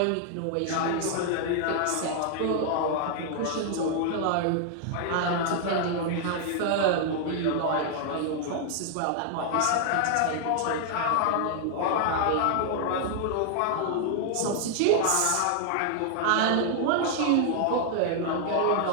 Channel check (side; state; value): both; different; correlation 0.00